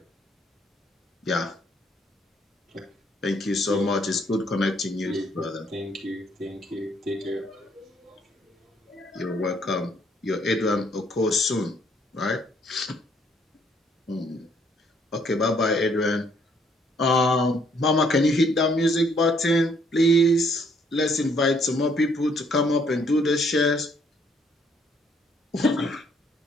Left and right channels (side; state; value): both; normal; correlation 0.67